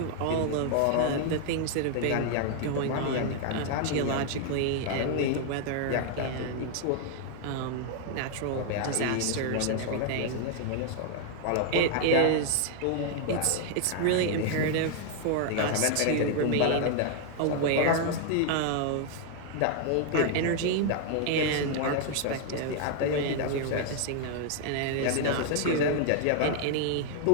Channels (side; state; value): both; different; correlation 0.00